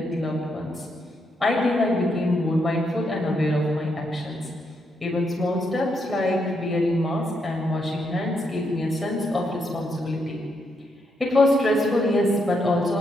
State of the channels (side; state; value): both; normal; correlation 0.79